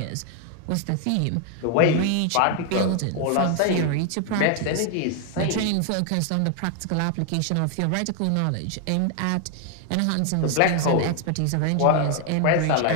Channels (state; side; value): different; both; correlation 0.00